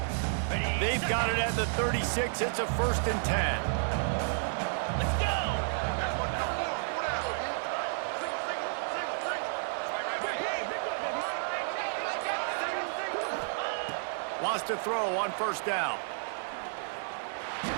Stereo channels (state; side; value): silent; left; digital silence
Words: They've got it at the 36. It's a 1st and 10. Wants to throw on first down.